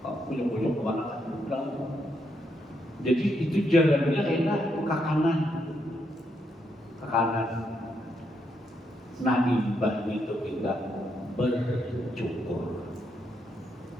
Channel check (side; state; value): both; normal; correlation 0.78